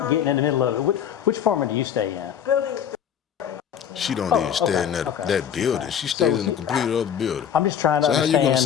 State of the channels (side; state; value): right; quieter; 8.7 dB